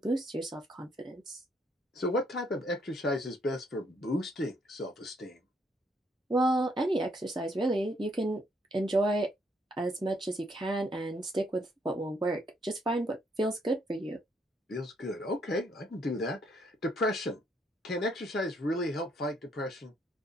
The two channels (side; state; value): both; normal; correlation 0.71